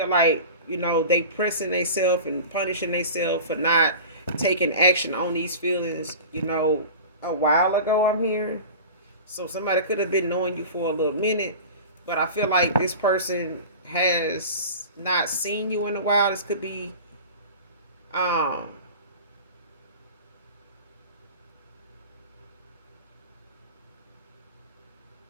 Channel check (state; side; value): inverted; both; correlation -0.36